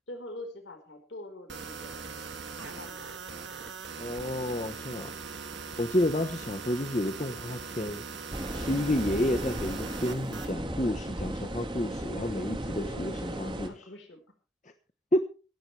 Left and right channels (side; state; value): both; normal; correlation 0.68